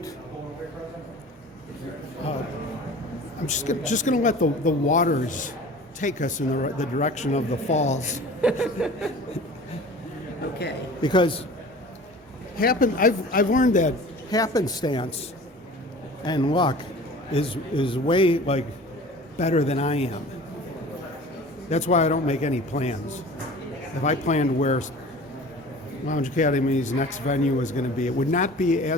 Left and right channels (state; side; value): normal; both; correlation 0.42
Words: I'm just going to let the waters take us in the direction of the falls, Okay. because I've learned that happenstance and luck is way like better than I am. That's why I don't make any plans. If I planned where Lounge Academy's next venue is going to be, it would not be